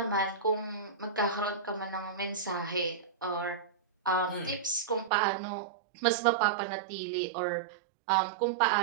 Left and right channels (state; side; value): drops out; left; at 5.1 s